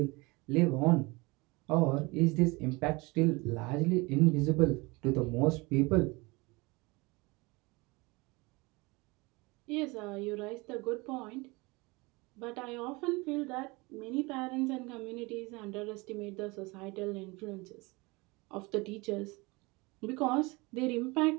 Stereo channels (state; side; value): quieter; left; 25.0 dB